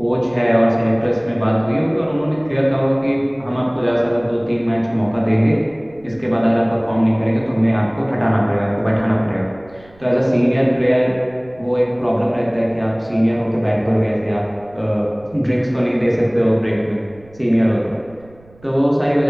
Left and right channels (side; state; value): right; noise; rumble, 26 dB below the sound